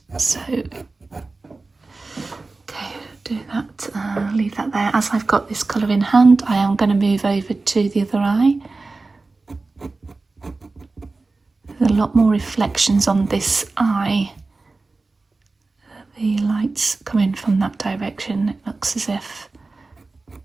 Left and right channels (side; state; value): left; quieter; 3.6 dB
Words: So do that, leave that there. As I've got this colour in hand, I am going to move over to the other eye. There's a lot more reflections on this eye. The lights come in from that direction. It looks as if